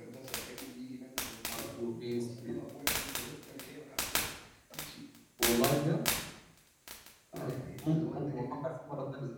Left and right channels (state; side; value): identical; both; correlation 1.00